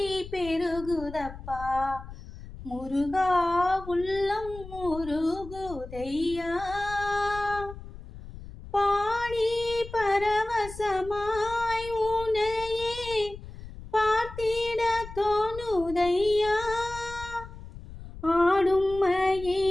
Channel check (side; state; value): left; noise; rumble, 14 dB below the sound